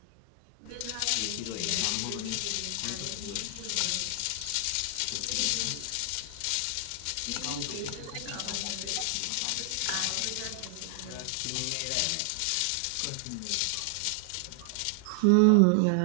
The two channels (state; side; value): different; both; correlation 0.00